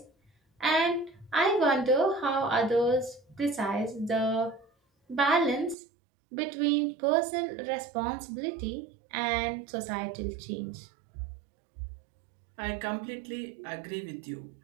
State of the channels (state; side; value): drops out; left; at 5.8 s